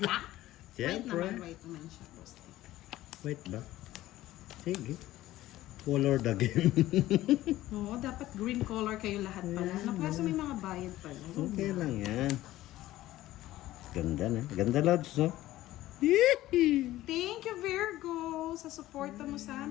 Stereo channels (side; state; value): right; quieter; 15.5 dB